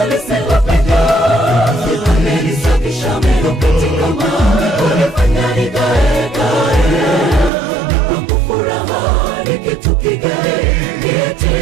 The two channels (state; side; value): drops out; left; at 7.5 s